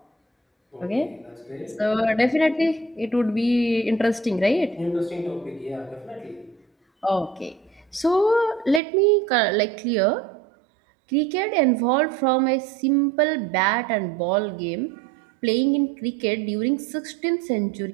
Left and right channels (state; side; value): drops out; left; at 8.8 s